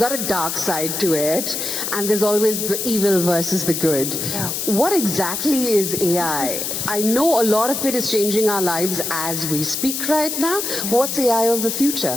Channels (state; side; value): noise; left; hiss, 3 dB below the sound